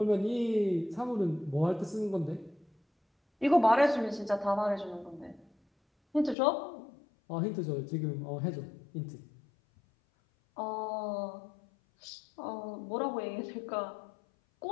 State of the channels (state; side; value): drops out; right; at 6.4 s